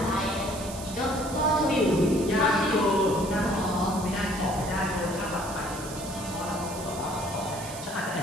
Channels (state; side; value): noise; right; hiss, 12 dB below the sound